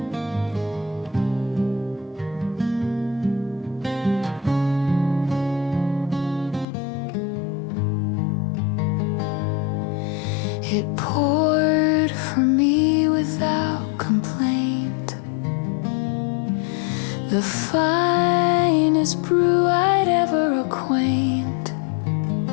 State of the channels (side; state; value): right; drops out; at 6.7 s